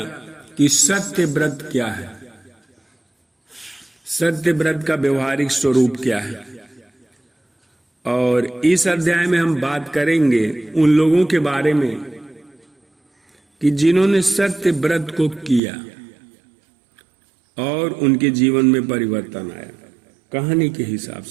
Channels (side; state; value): left; drops out; at 15.6 s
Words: कि सत्य व्रत क्या है, सत्य व्रत का व्यवहारिक स्वरूप क्या है, और इस अध्याय में हम बात करेंगे उन लोगों के बारे में कि जिन्होंने सत्य व्रत को किया और उनके जीवन में परिवर्तन आया, कहानी के हिसाब